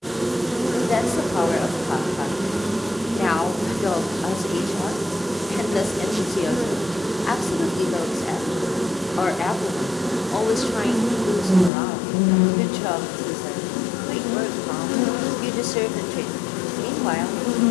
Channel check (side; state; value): right; drops out; at 11.7 s